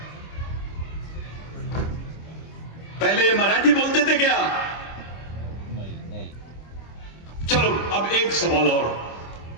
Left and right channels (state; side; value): late; right; 25 ms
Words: पहले ये मराठी बोलते थे क्या? नहीं। चलो अब एक सवाल और।